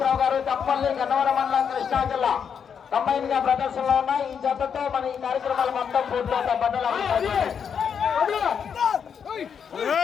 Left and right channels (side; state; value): right; quieter; 7.2 dB